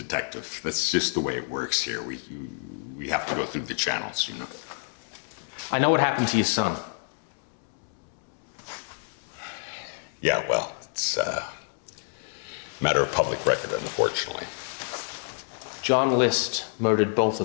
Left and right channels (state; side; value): silent; right; digital silence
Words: that's just the way it works here. We have to go through the channels, you know. I know what happened to your son. Yeah, well, it's a matter of public record, unfortunately. John List murdered both